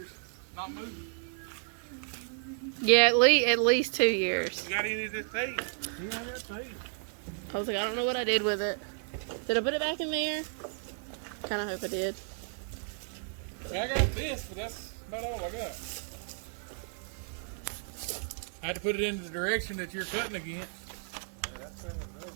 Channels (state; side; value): silent; left; 56 dB below the other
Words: not moving. Yeah, at least 2 years. You got any of this tape? Yeah, I got tape. I was like, I don't know what I did with it. Did I put it back in there? Kind of hope I did. I got this, but that's about all I got. I had to put it into the direction that you're cutting against.